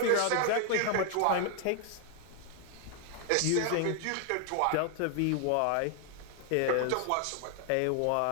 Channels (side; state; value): both; different; correlation 0.00